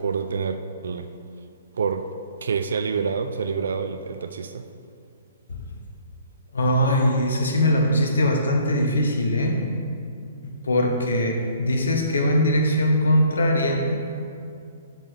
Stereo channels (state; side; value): inverted; both; correlation -0.60